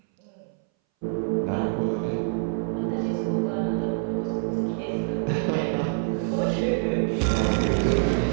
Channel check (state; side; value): silent; left; 60 dB below the other